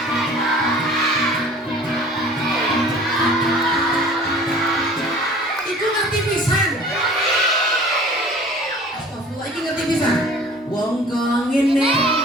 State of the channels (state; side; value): normal; both; correlation 0.47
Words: wong kong ini